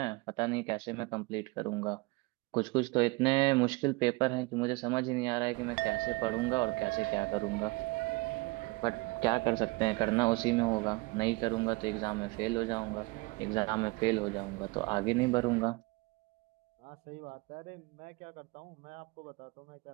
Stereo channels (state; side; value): quieter; left; 24.6 dB